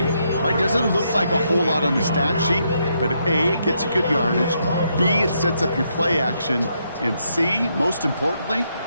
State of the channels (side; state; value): both; inverted; correlation -0.77